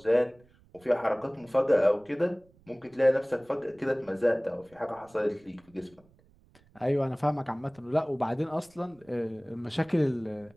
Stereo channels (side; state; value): right; noise; rumble, 30 dB below the sound